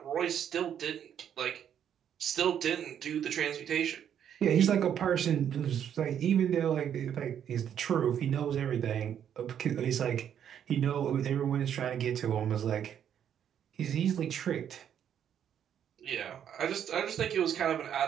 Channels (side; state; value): left; quieter; 9.2 dB